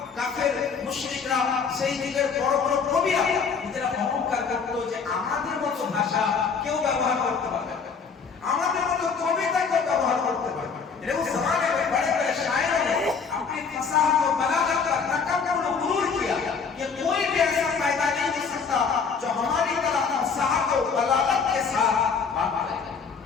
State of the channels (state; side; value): quieter; right; 5.6 dB